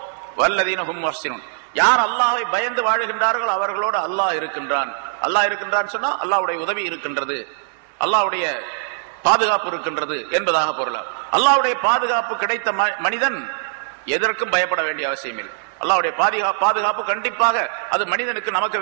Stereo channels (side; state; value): left; silent; digital silence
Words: வல்லதீன ஹும் முஹ்ஸினூன். யார் அல்லாஹ்வை பயந்து வாழுகின்றார்களோ அவர்களோடு அல்லாஹ் இருக்கின்றான். அல்லாஹ் இருக்கின்றான் சொன்னா அல்லாஹ்வுடைய உதவி இருக்கின்றது, அல்லாஹ்வுடைய பாதுகாப்பு இருக்கின்றது என்பதாக பொருள். அல்லாஹ்வுடைய பாதுகாப்பு கிடைத்த மனிதன் எதற்கும் பயப்பட வேண்டிய அவசியம் இல்லை. அல்லாஹ்வுடைய பாதுகாப்பு கண்டிப்பாக அது மனிதனுக்கு நமக்கு